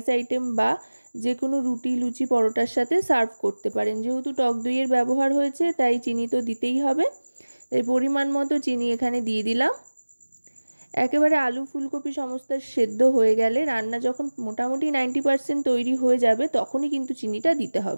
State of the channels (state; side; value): inverted; both; correlation -1.00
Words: আইটেম বা যে কোনো রুটি, লুচি, পরোটার সাথে সার্ভ করতে পারেন। যেহেতু টক দইয়ের ব্যবহার হয়েছে তাই চিনি তো দিতেই হবে, তাই পরিমাণ মতো চিনি এখানে দিয়ে দিলাম। একেবারে আলু ফুলকপি সমস্ত সেদ্ধ হয়ে গেলে, রান্না যখন মোটামুটি 90% তৈরি হয়ে যাবে তখনই কিন্তু চিনিটা দিতে